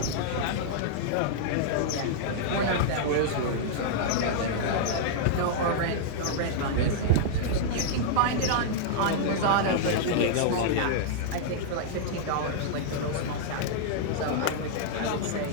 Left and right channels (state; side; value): different; both; correlation -0.02